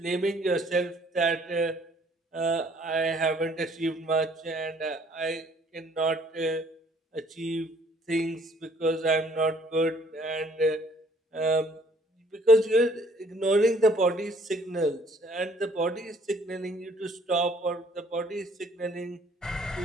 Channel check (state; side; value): normal; both; correlation 0.60